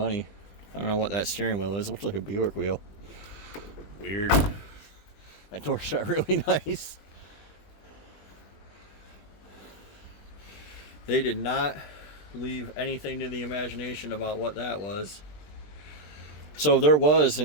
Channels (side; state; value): right; late; 20 ms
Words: I don't know what that steering wheel is. It looks like a Buick wheel. Weird. That door shut really nice. They did not leave anything to the imagination about what that was. So there was